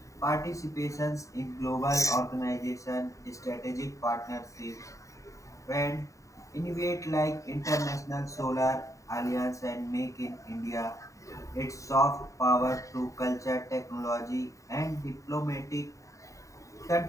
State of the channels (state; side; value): late; right; 0.16 ms